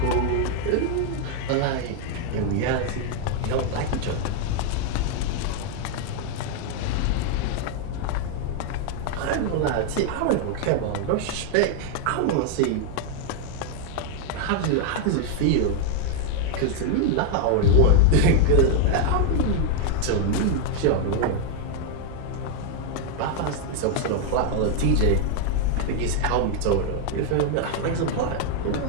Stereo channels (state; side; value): different; both; correlation 0.00